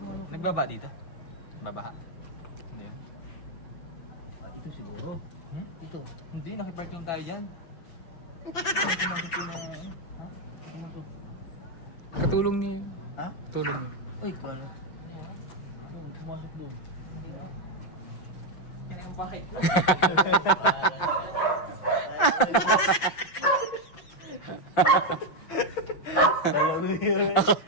ano? Nagbaba dito? Babaha? Hindi ah. Ah, ito siguro. Ito. Hindi, nakipark lang tayo dyan. Katulong niyo yun. Ha? Tulong niyo. Uy, paano? pumasok doon. Hindi ba? Ano yung bakit ko? Alam mo yun.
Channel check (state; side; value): late; right; 5.9 ms